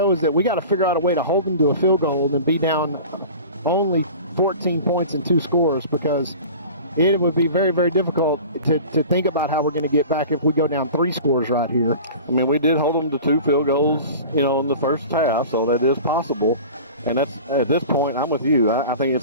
is that we got to figure out a way to hold them to a field goal and be down only 14 points and 2 scores, because it would be very, very difficult to think about how we're going to get back if we go down 3 scores right here. I mean, we did hold them to 2 field goals, in the first half, so that is possible. And that's, at this point, I'm with you. I think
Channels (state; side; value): inverted; both; correlation -0.38